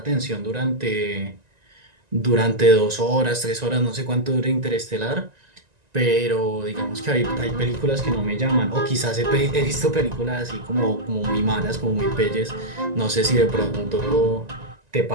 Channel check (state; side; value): late; left; 1.9 ms